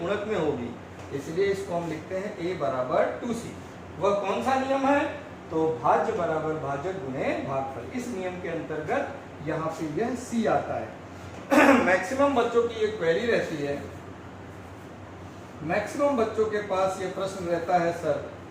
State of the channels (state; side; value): identical; both; correlation 1.00